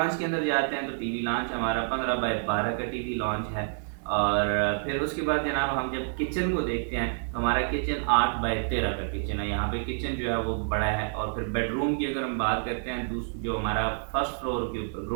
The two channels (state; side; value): silent; left; digital silence